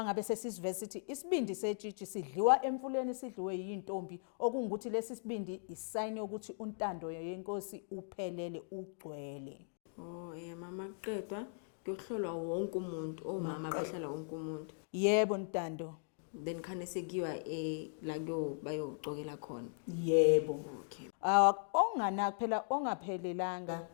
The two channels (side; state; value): right; silent; digital silence